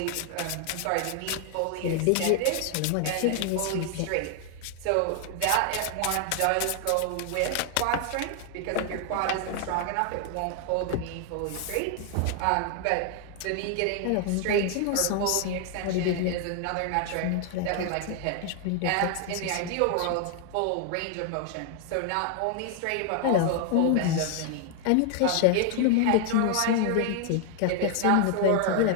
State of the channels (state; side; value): different; both; correlation 0.00